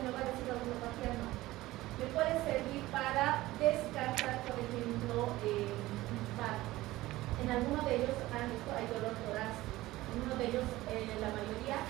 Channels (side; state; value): left; quieter; 17.6 dB